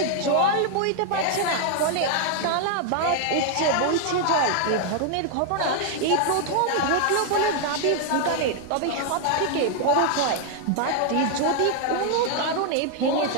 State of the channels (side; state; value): both; different; correlation 0.00